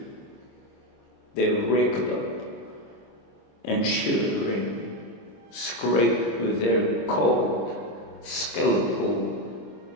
They raked up and, shuddering, scraped with their cold, skeletal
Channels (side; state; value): right; late; 26 ms